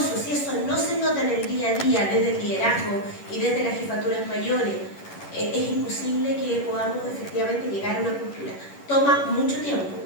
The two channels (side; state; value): right; late; 11 ms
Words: Si eso no se nota en el día a día, desde el liderazgo y desde las jefaturas mayores, es imposible que podamos efectivamente llegar a una cultura. Toma mucho tiempo.